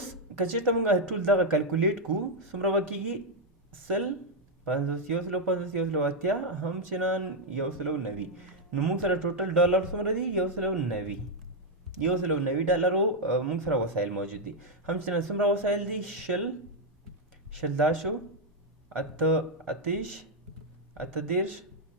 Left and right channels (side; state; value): both; normal; correlation 0.00